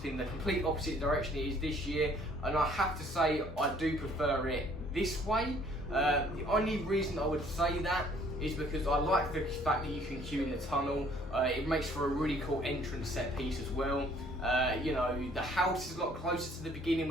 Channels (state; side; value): normal; both; correlation 0.59